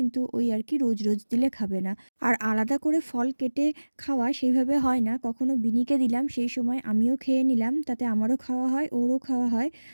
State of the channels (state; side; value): inverted; both; correlation -1.00